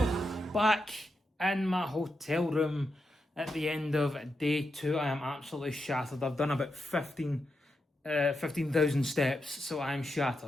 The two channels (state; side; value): normal; both; correlation 0.86